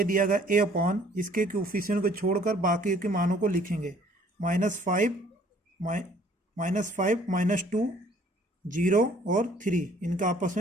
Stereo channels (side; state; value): both; normal; correlation 0.58